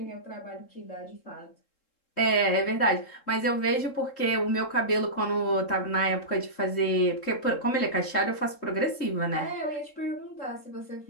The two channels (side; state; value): right; late; 3.7 ms